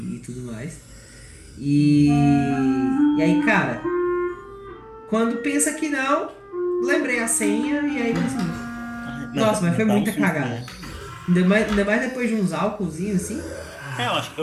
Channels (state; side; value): identical; both; correlation 1.00